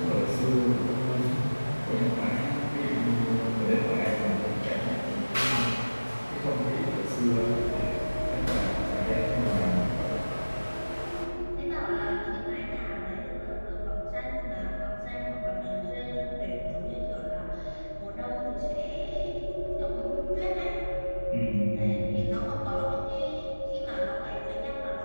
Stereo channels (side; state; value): both; inverted; correlation -1.00